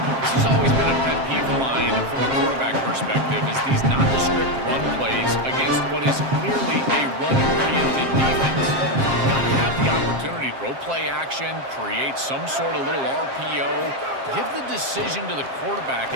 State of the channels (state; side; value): late; left; 7.5 ms